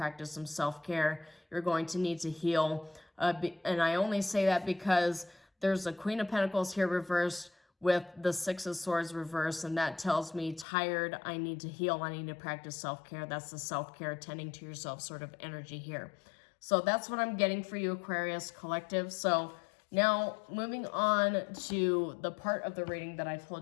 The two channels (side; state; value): right; drops out; at 10.7 s